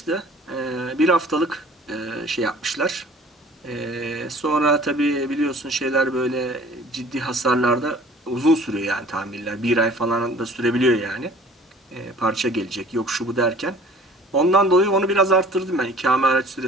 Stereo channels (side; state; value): both; normal; correlation 0.49